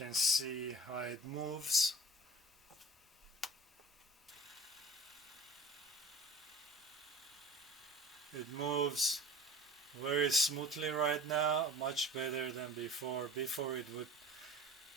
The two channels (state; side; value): normal; both; correlation 0.40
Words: see how it moves. It moves very smoothly right now, much better than before. Before it would